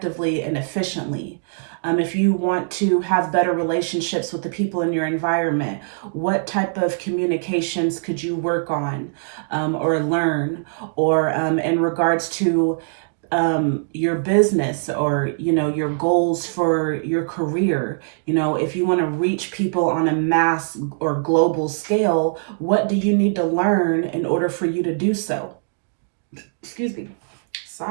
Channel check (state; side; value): silent; left; digital silence